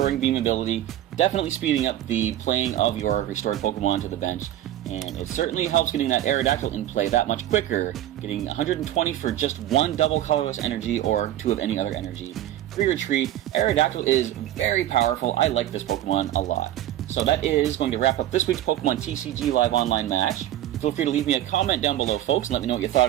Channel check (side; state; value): left; quieter; 12.9 dB